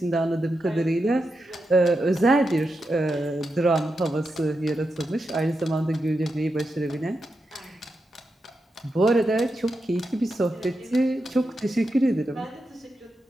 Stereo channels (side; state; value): both; normal; correlation 0.87